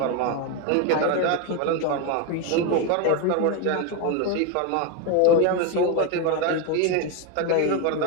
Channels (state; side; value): different; both; correlation 0.02